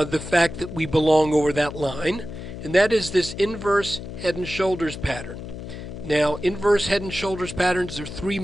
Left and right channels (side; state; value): left; noise; hum, 10 dB below the sound